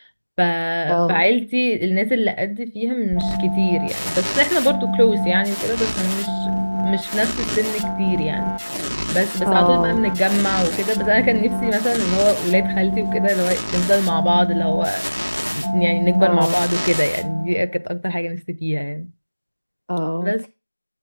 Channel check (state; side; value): inverted; both; correlation -1.00